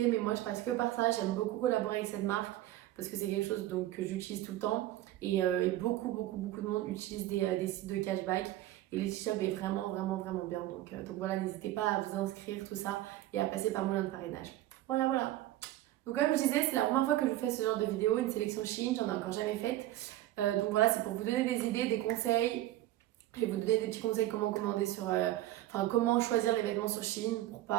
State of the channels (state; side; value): quieter; left; 15.0 dB